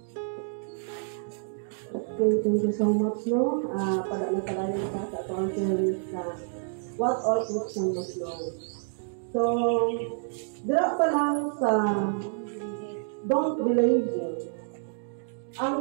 Okay, thank you so much, no? Padalang ka sa atong theory sa what all Christians must know. So, dira pa lang sa don't be lazy.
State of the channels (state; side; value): silent; left; digital silence